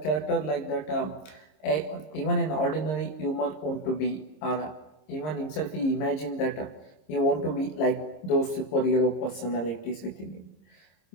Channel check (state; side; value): late; right; 26 ms